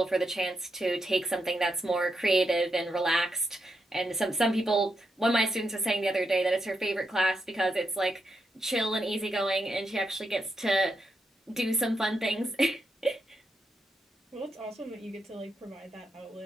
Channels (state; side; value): normal; both; correlation 0.83